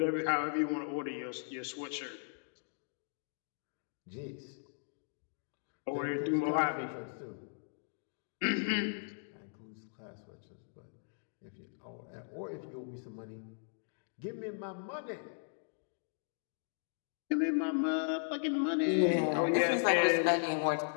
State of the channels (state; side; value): silent; right; digital silence